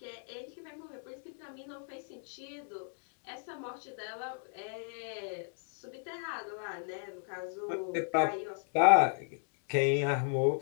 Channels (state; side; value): silent; right; 54 dB below the other